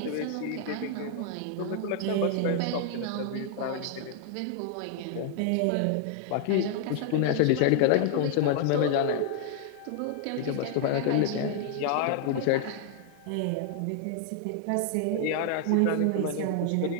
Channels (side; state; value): both; different; correlation 0.00